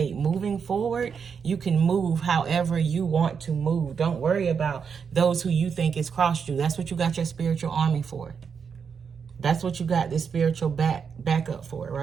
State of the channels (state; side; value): quieter; left; 6.4 dB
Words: Moving forward, you can move however you want to move. Don't worry about those who you think has crossed you. That's what you got your spiritual army for. That's what you got this spiritual backup for,